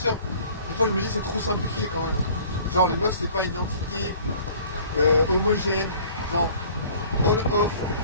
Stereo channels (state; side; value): inverted; both; correlation -0.51